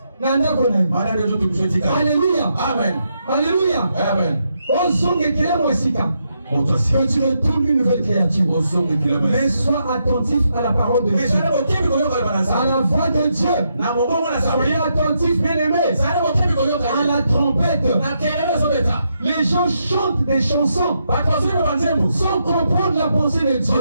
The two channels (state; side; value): inverted; both; correlation -0.80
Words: Alléluia. Amen. Alléluia. Amen. Au son, il y a Moïsika. Que tu retournes une nouvelle créature. Mais sois attentif à la parole de Dieu. À la voix de Dieu. Soyez attentif, bien aimé. À la trompette. Les gens chantent des chansons sans comprendre la pensée de Dieu.